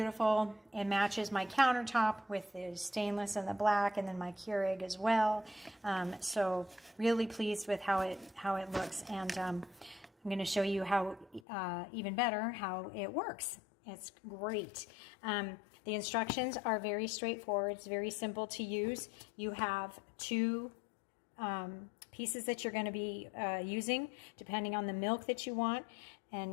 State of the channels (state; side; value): drops out; right; at 11.4 s